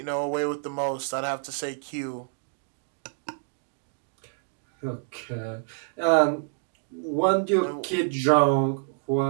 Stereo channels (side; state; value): left; silent; digital silence